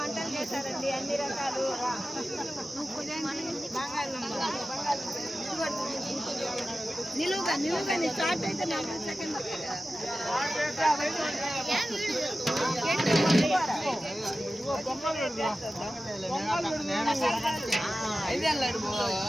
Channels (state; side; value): normal; both; correlation 0.94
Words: చేశారండి అన్ని రకాలు. నిలువుగా నిలువుగా స్టార్ట్ అయితే 40 సెకండ్